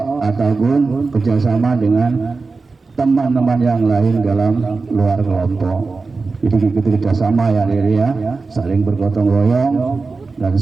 ataupun kerjasama dengan teman-teman yang lain dalam luar kelompok. Jadi ikuti kerjasama ya, diri ya, saling bergotong royong dan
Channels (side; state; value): left; quieter; 4.1 dB